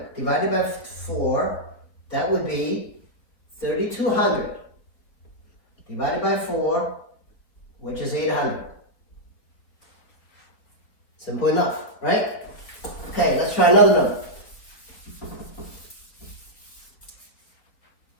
divided by 4, that would be 3,200 divided by 4, which is 800. Simple enough, right? Okay, let's try another number.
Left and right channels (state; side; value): late; right; 3.9 ms